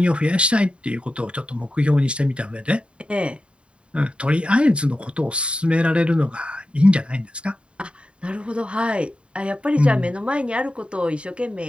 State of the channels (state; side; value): late; left; 0.057 ms